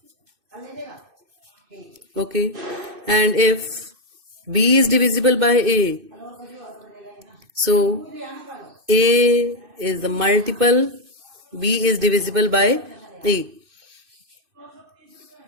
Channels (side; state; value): left; late; 2.6 ms